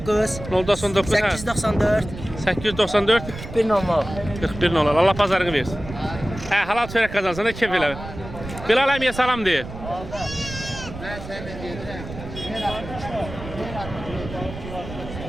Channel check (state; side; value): noise; right; rumble, 11 dB below the sound